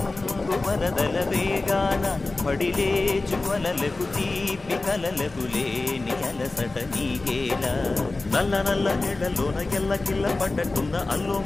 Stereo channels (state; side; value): quieter; right; 3.3 dB